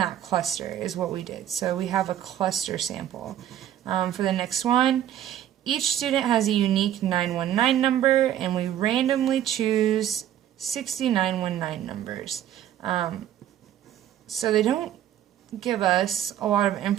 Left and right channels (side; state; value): left; quieter; 11.2 dB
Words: cluster is what we did. So we have a cluster sample. For the next one, each student has a unique 919 number, and we randomly choose 60 919 numbers. So they don't give us a lot of